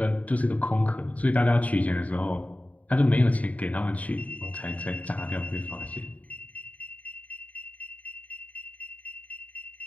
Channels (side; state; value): right; late; 0.070 ms